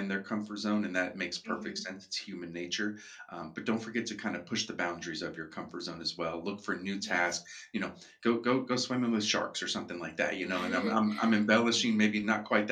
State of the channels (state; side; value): identical; both; correlation 1.00